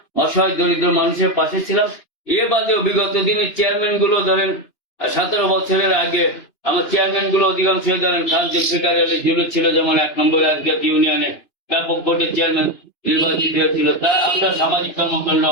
অসহায় দরিদ্র মানুষের পাশে ছিলাম। এ বাদেও বিগত দিনের চেয়ারম্যান গুলো ধরেন, 17 বছরের আগে আমার চেয়ারম্যান গুলো অধিকাংশ ধরেন খান জুলফিকার আলী জুলু ছিল, যেমন 1 নম্বর আজকের ইউনিয়নে ব্যাপক ভোটের চেয়ারম্যান নির্বাচিত হয়েছিল, তা আমরা সামাজিক কর্মকাণ্ড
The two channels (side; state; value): right; late; 2.9 ms